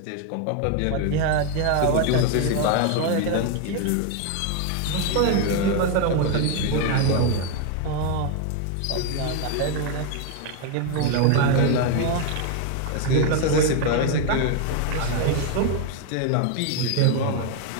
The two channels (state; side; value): different; both; correlation 0.01